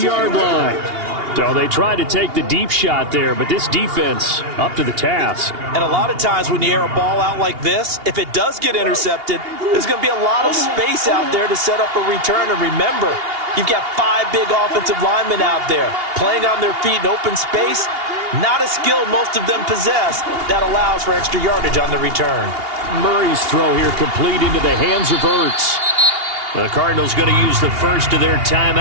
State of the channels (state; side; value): late; left; 2.8 ms